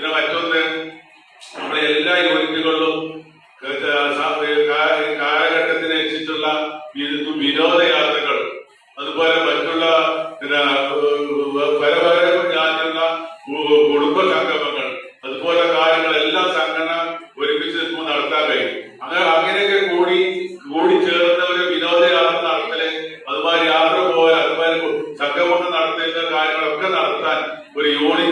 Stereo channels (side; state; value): both; identical; correlation 1.00